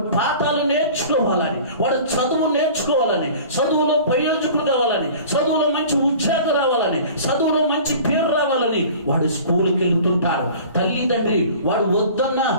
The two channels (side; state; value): both; inverted; correlation -0.43